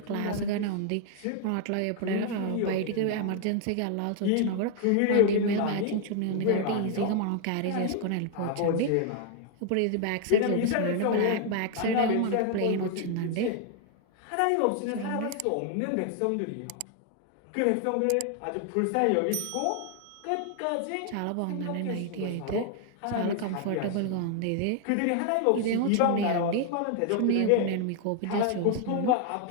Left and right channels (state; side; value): different; both; correlation 0.00